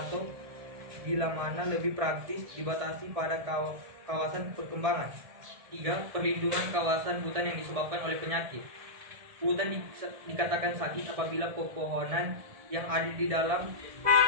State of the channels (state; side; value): late; left; 1.7 ms